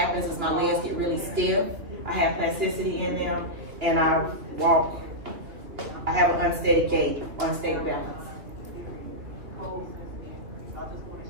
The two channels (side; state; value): left; late; 3.0 ms